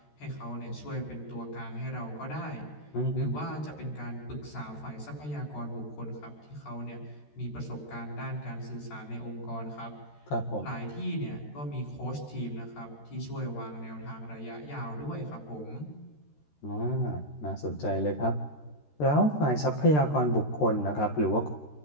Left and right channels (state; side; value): late; right; 13 ms